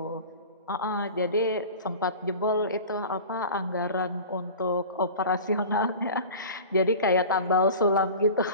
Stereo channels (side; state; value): both; inverted; correlation -0.36